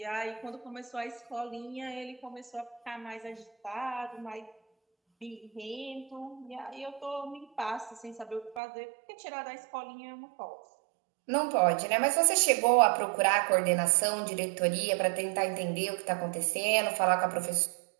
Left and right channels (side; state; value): left; drops out; at 8.6 s